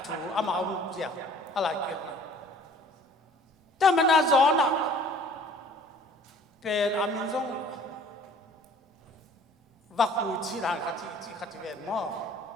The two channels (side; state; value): both; normal; correlation 0.52